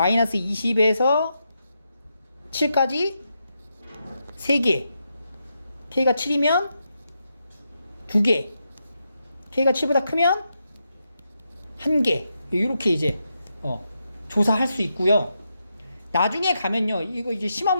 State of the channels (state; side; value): inverted; both; correlation -0.84